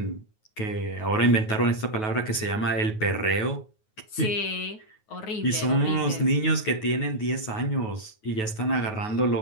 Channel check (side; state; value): right; late; 9.3 ms